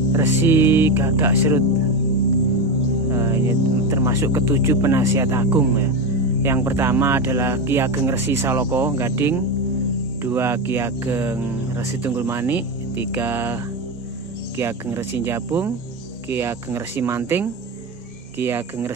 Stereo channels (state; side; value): normal; both; correlation 0.15